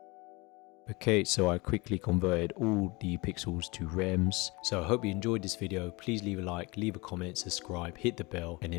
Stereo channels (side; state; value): right; quieter; 25.4 dB